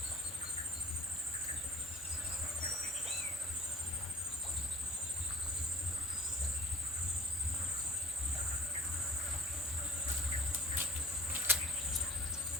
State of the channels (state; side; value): normal; both; correlation 0.49